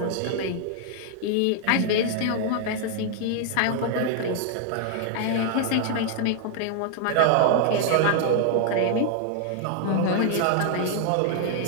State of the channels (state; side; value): different; both; correlation 0.00